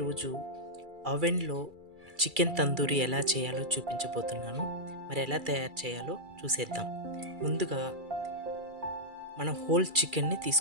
ఓవెన్లో చికెన్ తందూరి ఎలా చేయాలో చూపించబోతున్నాను. మరి ఎలా తయారు చేయాలో చూసేద్దాం. ముందుగా మనం హోల్ చికెన్ని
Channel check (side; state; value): left; late; 2.3 ms